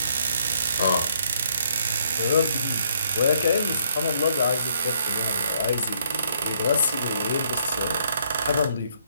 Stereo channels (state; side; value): inverted; both; correlation -0.69